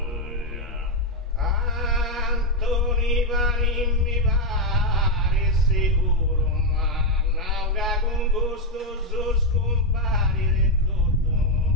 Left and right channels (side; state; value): both; normal; correlation 0.04